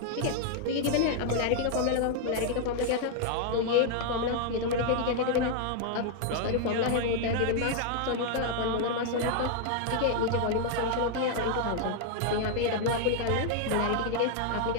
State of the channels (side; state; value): both; different; correlation 0.00